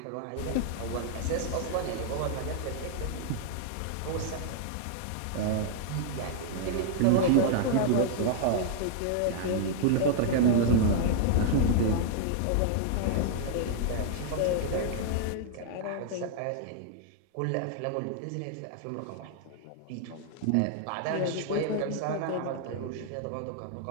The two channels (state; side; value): different; both; correlation -0.01